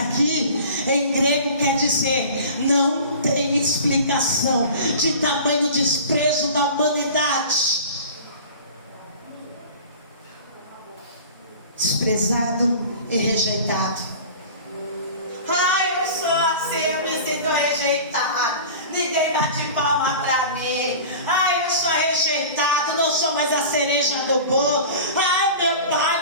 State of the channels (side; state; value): both; inverted; correlation -0.38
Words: em grego quer dizer não tem explicação de tamanho desprezo da humanidade. Desprezado e rejeitado. Ai, eu sou assim, eu me sinto rejeitado. Ninguém bate palma pra mim. Ai, eu sou rejeitado, não sou mais a cereja do bolo. Ai, meu